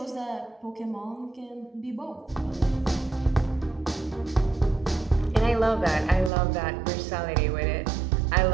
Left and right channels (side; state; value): left; drops out; at 6.3 s